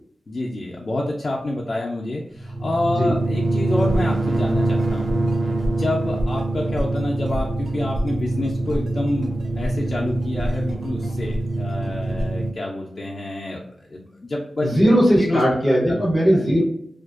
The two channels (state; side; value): normal; both; correlation 0.93